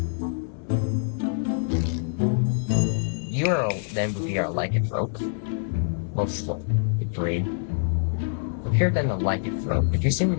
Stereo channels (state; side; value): silent; right; 59 dB below the other